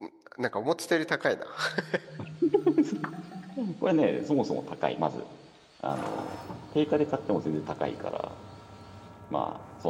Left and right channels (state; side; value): identical; both; correlation 1.00